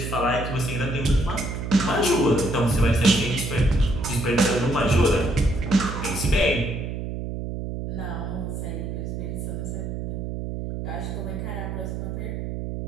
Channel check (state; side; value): noise; right; hum, 5 dB below the sound